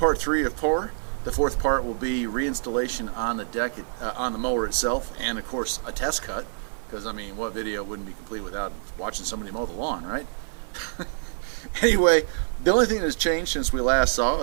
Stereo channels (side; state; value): left; silent; 61 dB below the other